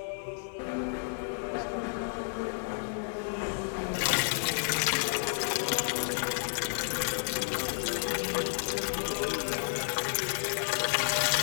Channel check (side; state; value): right; silent; 57 dB below the other